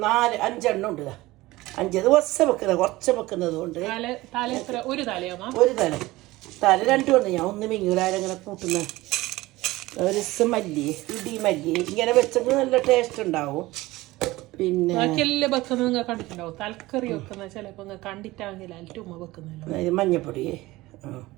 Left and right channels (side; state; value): left; quieter; 19.1 dB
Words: 4-5 ഉണ്ട്. 5 ദിവസം വെക്കുന്നത് കുറച്ച് വെക്കുന്നത് കൊണ്ട് ഒരു തലയാ ഒരു തല 2 ഉണ്ട്. ഞാൻ ഒന്ന് മിങ്ങൂലാരങ്ങനെ കൂട്ടുന്ന ഒരു ദിവസം മല്ലി ഇടി മല്ലി ഇങ്ങനെ വെച്ചെങ്കിൽ നല്ല ടേസ്റ്റ് ഉണ്ടാവും. പിന്നെ കണ്ടിട്ടുണ്ടാവും തലക്കറി വെക്കുന്ന ചിലപ്പോ കണ്ടിട്ടാണെങ്കിൽ മഞ്ഞപ്പൊടി